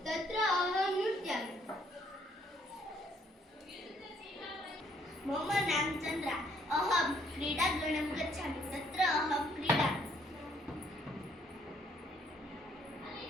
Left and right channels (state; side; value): normal; both; correlation 0.66